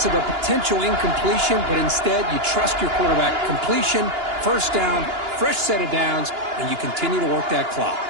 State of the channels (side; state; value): left; late; 2.9 ms